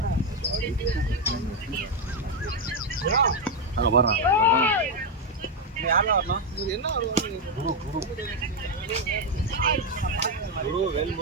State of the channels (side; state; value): both; normal; correlation 0.04